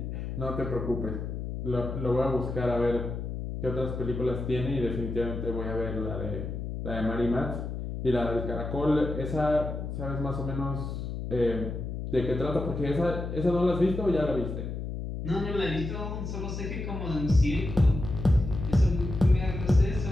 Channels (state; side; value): noise; left; hum, 5 dB below the sound